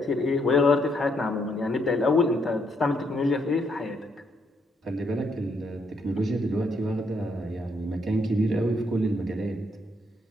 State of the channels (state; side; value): normal; both; correlation 0.74